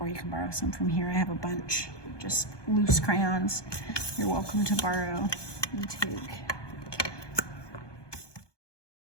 you can borrow some from here. I have a bunch, just loose crayons. You're welcome to borrow and take.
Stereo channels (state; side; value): late; right; 1.2 ms